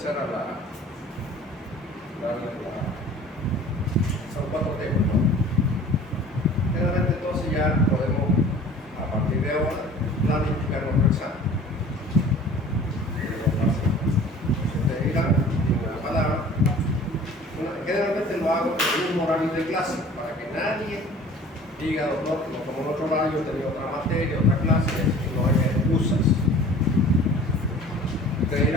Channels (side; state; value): both; normal; correlation 0.46